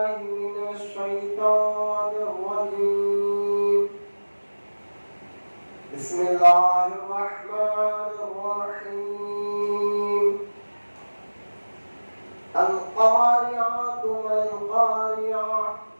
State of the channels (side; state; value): both; inverted; correlation -1.00